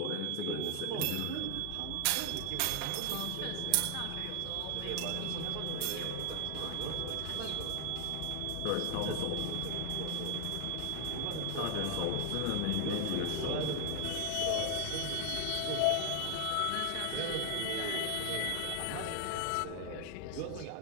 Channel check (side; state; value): both; different; correlation 0.00